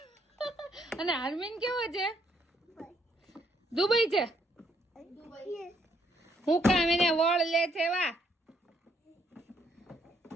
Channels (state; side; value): normal; both; correlation 0.71